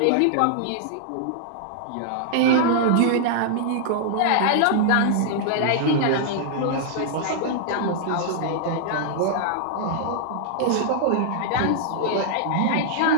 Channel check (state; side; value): different; both; correlation -0.01